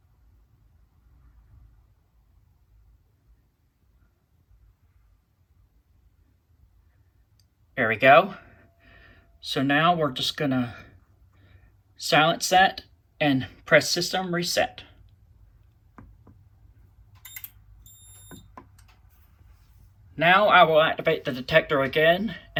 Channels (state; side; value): identical; both; correlation 1.00